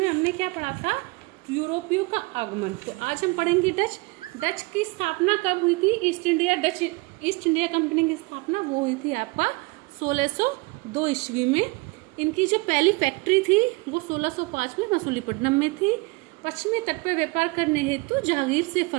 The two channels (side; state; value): left; quieter; 25.9 dB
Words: हमने क्या पढ़ा था? यूरोपियों का आगमन। तो आज हम पढ़ेंगे डच। डच की स्थापना कब हुई थी? ईस्ट इंडिया कंपनी की स्थापना वो हुई थी आपका 1602 ईस्वी में। इनकी जो पहली फैक्ट्री थी वो 1605 में मसूलीपट्टनम में थी। पश्चिमी तट पर व्यापार करने हेतु जहांगीर से